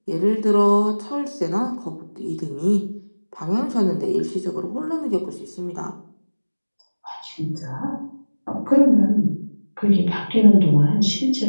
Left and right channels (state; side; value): inverted; both; correlation -1.00